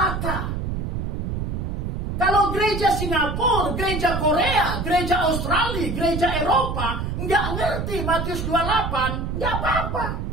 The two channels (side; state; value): right; noise; rumble, 3 dB below the sound